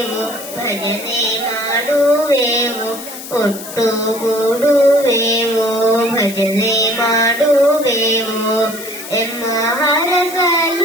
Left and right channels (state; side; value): noise; left; hiss, 12 dB below the sound